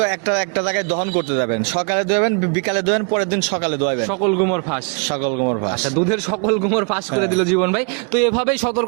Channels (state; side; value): quieter; left; 39.1 dB